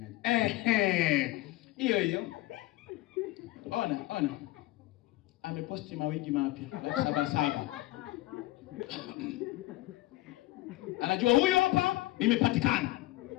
Hiyo. Ona. Ameposti mawigi mapya 77. Anajua huyo hapa nimepatikana.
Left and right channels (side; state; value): right; quieter; 18.0 dB